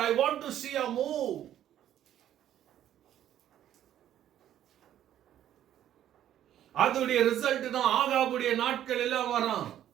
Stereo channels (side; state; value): left; quieter; 11.4 dB